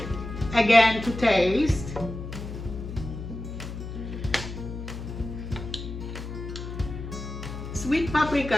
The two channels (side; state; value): left; noise; hum, 8 dB below the sound